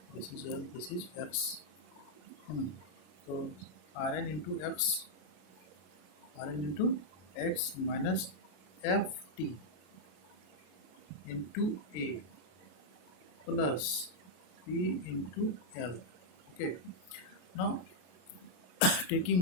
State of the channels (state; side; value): late; right; 33 ms